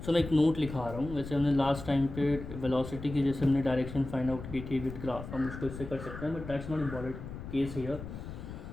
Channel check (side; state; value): left; noise; rumble, 10 dB below the sound